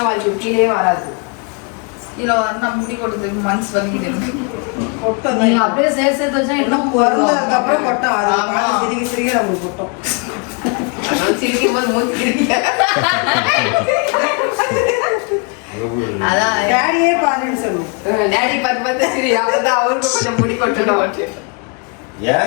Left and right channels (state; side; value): quieter; right; 34.9 dB